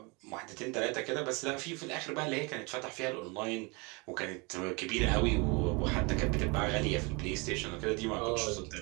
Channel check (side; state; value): left; quieter; 28.8 dB